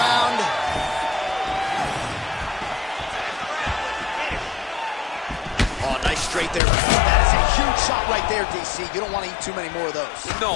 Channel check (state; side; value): drops out; right; at 6.6 s